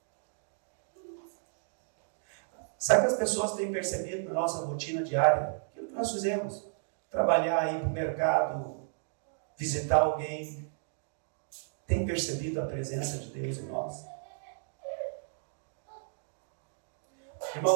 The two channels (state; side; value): silent; left; digital silence